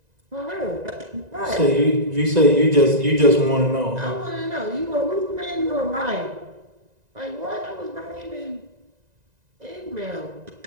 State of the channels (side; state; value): left; late; 1.9 ms